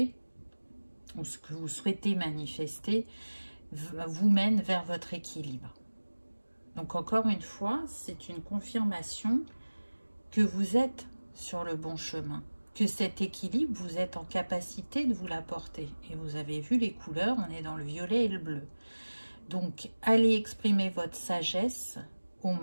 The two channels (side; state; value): both; inverted; correlation -1.00